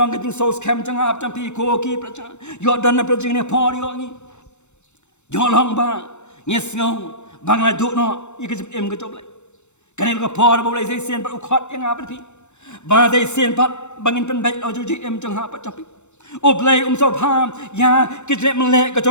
kajing saus kem jangan apa campi koki percaya. Yo dan apa percaya ni por yo ni. Yo long ba ngesngau bang la duk no ikut em kecob lai. Kan dia por boleh saya sen pat ukot yang apa tapi. Ba saya sen pat bangin pen baik ojo ji em jangan apa campi. Oblai so pham ya kita melek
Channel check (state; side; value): late; right; 0.83 ms